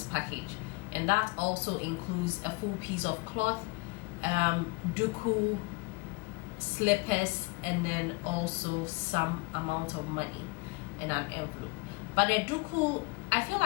package, and that also includes a full piece of cloth, duku, slippers, and then also some amount of money in an envelope. But the duku, I feel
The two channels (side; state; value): right; quieter; 26.6 dB